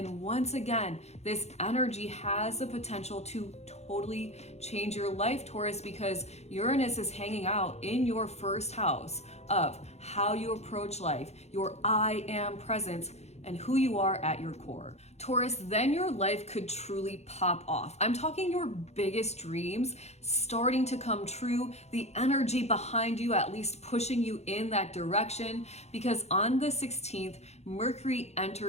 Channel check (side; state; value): right; late; 0.31 ms